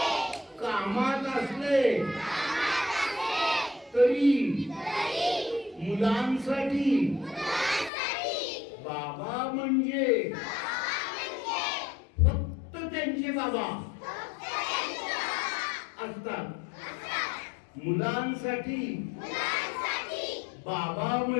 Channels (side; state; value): right; drops out; at 7.9 s